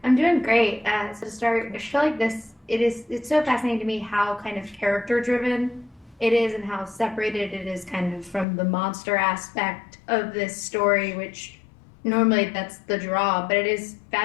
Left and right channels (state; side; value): drops out; right; at 8.5 s